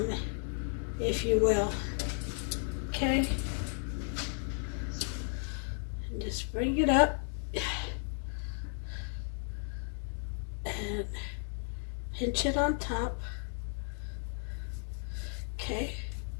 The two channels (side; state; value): right; silent; 55 dB below the other